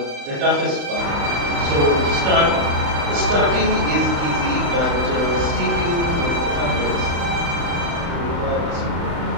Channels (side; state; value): left; late; 35 ms